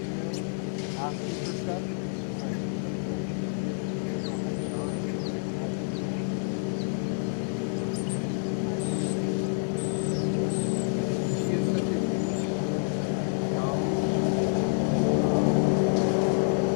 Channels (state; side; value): silent; right; digital silence